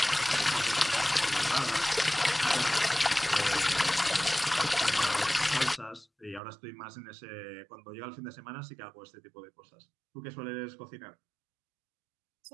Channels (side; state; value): left; drops out; at 6.4 s